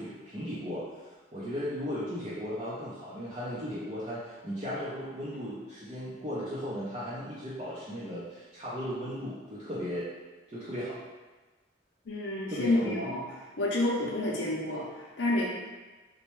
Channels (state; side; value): normal; both; correlation 0.51